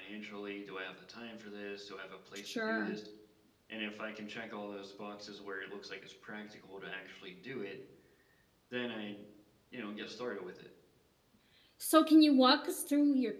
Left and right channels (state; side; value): identical; both; correlation 1.00